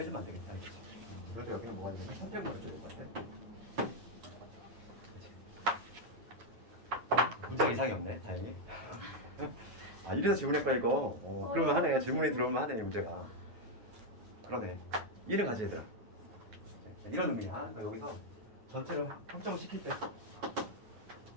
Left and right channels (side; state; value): left; late; 9.3 ms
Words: 안 되겠다. 그래도 여기는 뭐가 있냐면 선택문을 줄것 같아. 문제가 이상이 없네. 다행히. 아 이래서 질문했구나 이거. 그러면 하네. 질문이 들어오면 하네 문제가. 그러네. 이해를 가져 얘들아. 이런 의미야. 그러니까 여기서 전체를 확정을 시킬 때